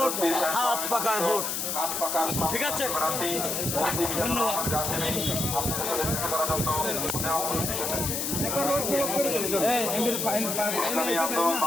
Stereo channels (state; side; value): noise; left; hiss, 2 dB below the sound